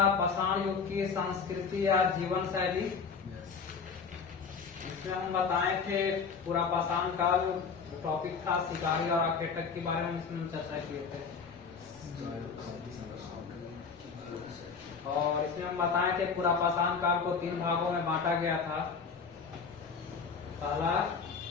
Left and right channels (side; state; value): right; quieter; 5.6 dB